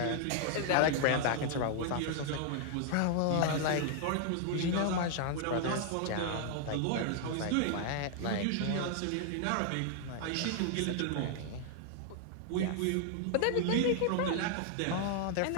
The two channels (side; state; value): both; different; correlation 0.00